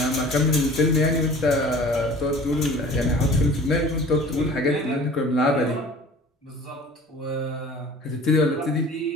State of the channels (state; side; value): normal; both; correlation 0.45